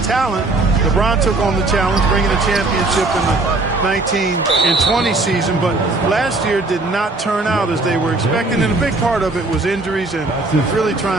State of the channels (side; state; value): left; quieter; 3.2 dB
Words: talent. LeBron took on the challenge, bringing a championship in the 19 and 20 season, but last year did not turn out as they were expecting, and a big part of it was injuries and really